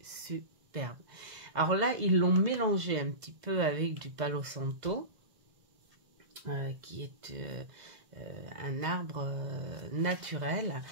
superbe. Alors là, ils l'ont mélangé un petit peu avec du Palo Santo. Qui est un arbre naturel.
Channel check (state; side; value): late; left; 2.0 ms